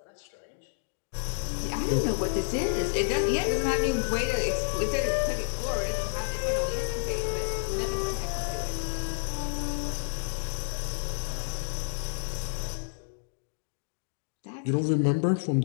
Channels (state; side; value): silent; right; digital silence